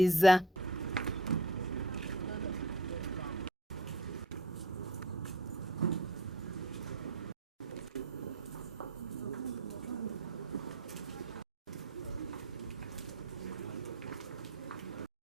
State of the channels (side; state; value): both; normal; correlation 0.40